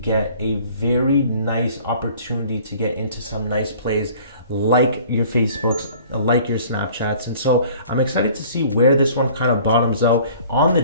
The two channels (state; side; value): inverted; both; correlation -0.51